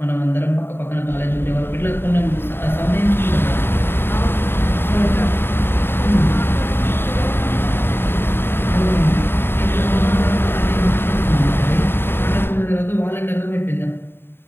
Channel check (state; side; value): late; right; 0.11 ms